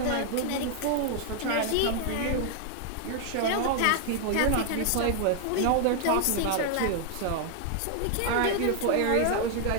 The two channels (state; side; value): different; both; correlation 0.00